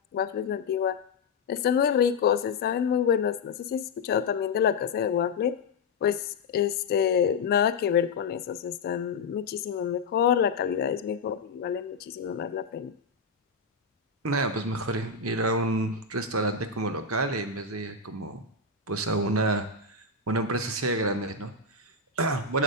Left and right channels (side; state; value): right; quieter; 4.4 dB